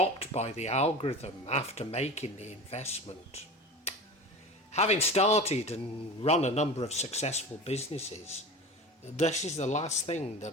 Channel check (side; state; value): both; normal; correlation 0.32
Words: by the algorithm after making the investment. Having started and run a number of successful businesses, this is the last thing